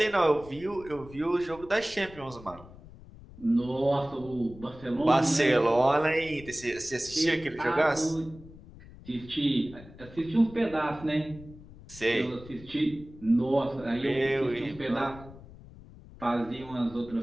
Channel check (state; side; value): noise; left; rumble, 19 dB below the sound